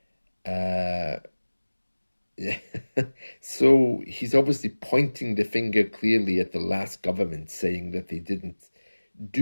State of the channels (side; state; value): both; inverted; correlation -1.00